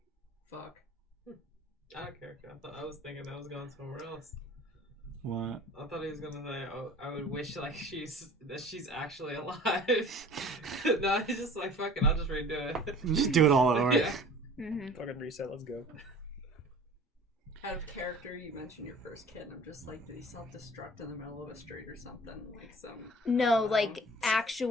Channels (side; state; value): both; normal; correlation 0.46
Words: Fuck. Out of character. I was thinking I was going somewhere else. What? I thought he was gonna say, "Oh, I would wish like she's actually alive." No, he's just like, "Fucking, I'll just redo it." Just do it all over. Yeah. Fucking reset, let's go. Out of character, you mentioned your first kid, and I'm just like, did he self-destruct in the middle of a street or something? Like some... No, like